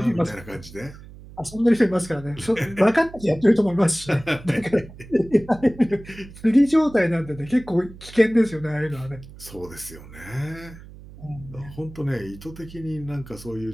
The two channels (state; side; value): noise; right; hum, 18 dB below the sound